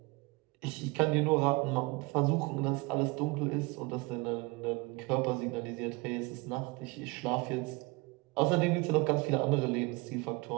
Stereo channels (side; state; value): left; quieter; 25.1 dB